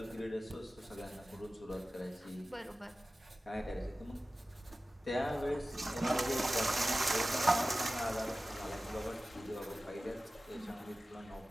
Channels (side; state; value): both; normal; correlation 0.96